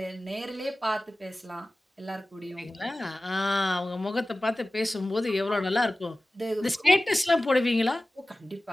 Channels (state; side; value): normal; both; correlation 0.97